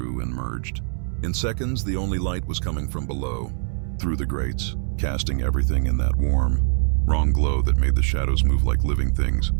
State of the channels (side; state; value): left; silent; digital silence